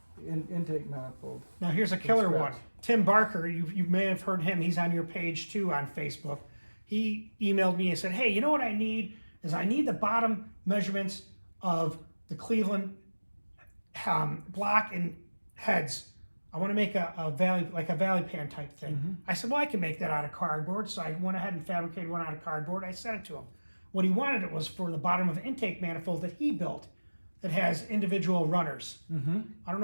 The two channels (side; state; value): both; inverted; correlation -1.00